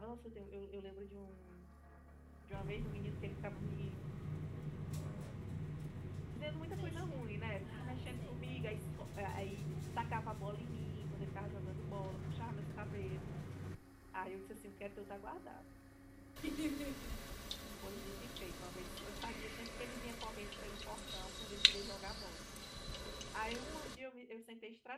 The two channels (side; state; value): both; identical; correlation 1.00